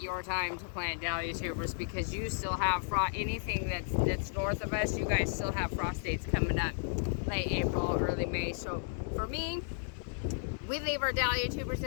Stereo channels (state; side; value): silent; right; digital silence